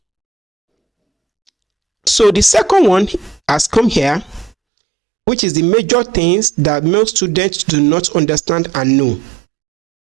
So the second one has come here, which is the major things that most students do not understand and know.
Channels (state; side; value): drops out; left; at 4.5 s